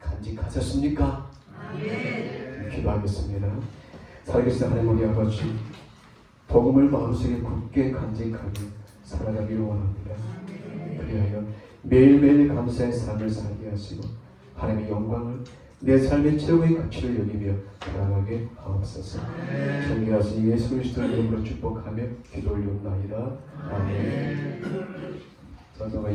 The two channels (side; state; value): both; identical; correlation 1.00